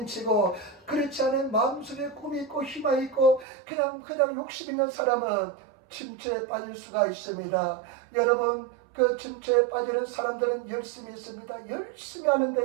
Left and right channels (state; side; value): drops out; left; at 3.5 s